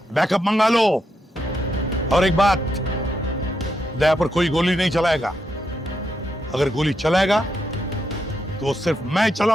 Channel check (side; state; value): both; normal; correlation 0.82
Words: बैकअप मंगा लो। और एक बात, दया पर कोई गोली नहीं चलाएगा। अगर गोली चलाएगा तो सिर्फ मैं